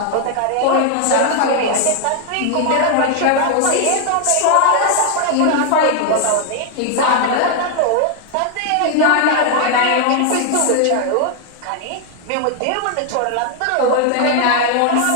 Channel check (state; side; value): different; both; correlation 0.00